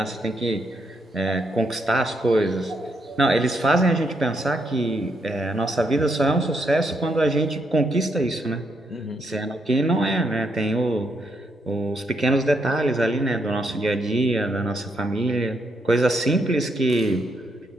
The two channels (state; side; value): normal; both; correlation 0.77